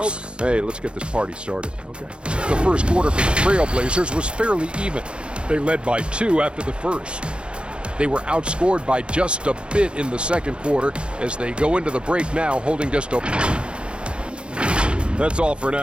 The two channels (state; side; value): late; left; 0.055 ms